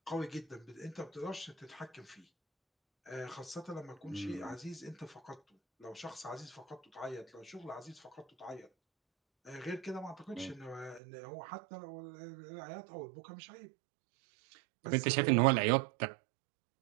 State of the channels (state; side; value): drops out; left; at 11.0 s